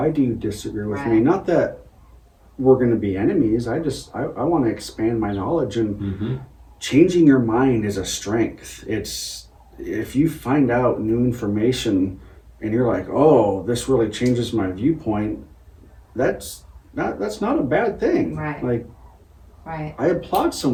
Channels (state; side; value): identical; both; correlation 1.00